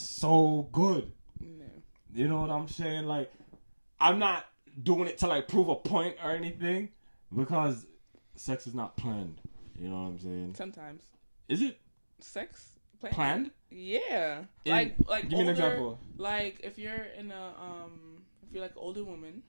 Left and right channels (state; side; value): inverted; both; correlation -1.00